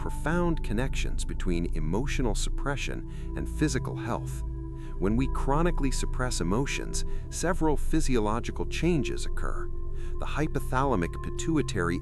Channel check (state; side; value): identical; both; correlation 1.00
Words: connections between emotional suppression and physical health. When we chronically suppress emotions, several physiological changes occur. The hypothalamic pituitary